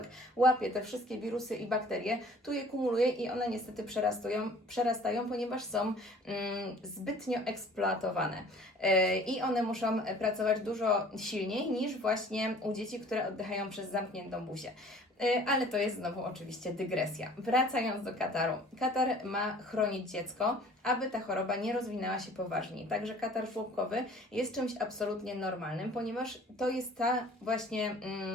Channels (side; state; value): both; normal; correlation 0.50